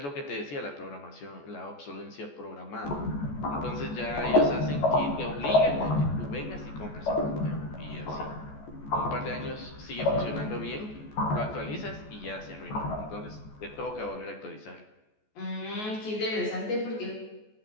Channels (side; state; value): right; late; 14 ms